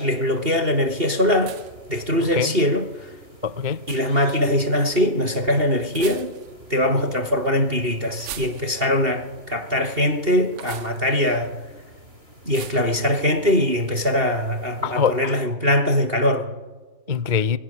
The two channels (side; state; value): left; late; 2.8 ms